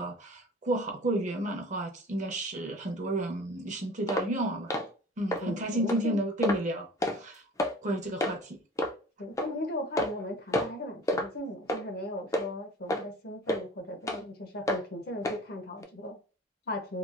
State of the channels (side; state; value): both; normal; correlation 0.43